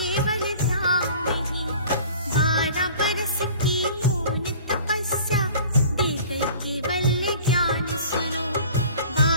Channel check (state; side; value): inverted; both; correlation -0.46